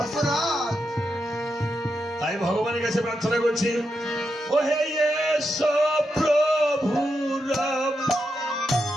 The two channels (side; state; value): both; normal; correlation 0.85